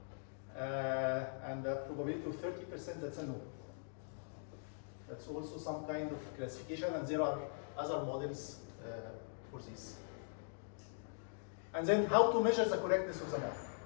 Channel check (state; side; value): silent; right; digital silence